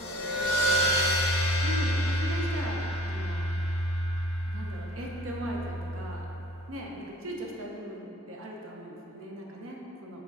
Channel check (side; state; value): both; normal; correlation 0.50